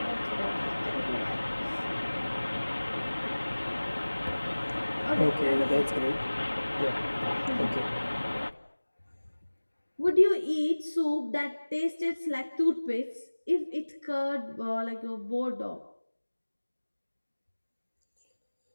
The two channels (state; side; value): inverted; both; correlation -1.00